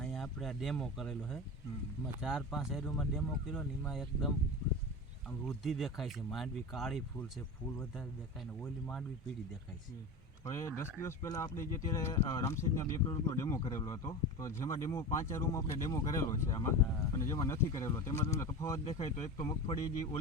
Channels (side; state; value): both; normal; correlation 0.28